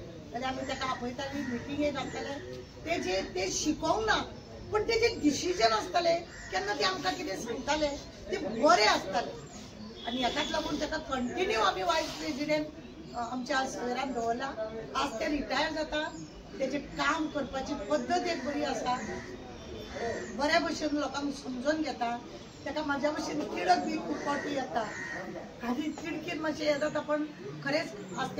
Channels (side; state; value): both; identical; correlation 1.00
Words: जाल्यार आमी तेका आपयताली मिटिंगेक घालताले ते शिकोवंक ना पण तेजे डिसिजन आसताले केन्ना ते आमकां कितें सांगताले ते बरें आसताले आनी हेकाच लागून तेका कंटिन्यू आमी वायस प्रेसिडेंट आमच्या सवेरान दवरला। आज ते रिटायर जाता तेजे काम करपाची पद्दत एक बरी आसा बऱ्या भशेन लोकांक समजून घेता तेका म्हाज्या भशेन तिडक बी खूब फावटी येता आनी तिडकीन मातशें हें जाता पण खरेंच आज